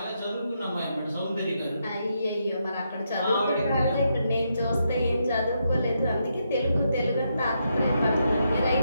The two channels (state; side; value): inverted; both; correlation -0.80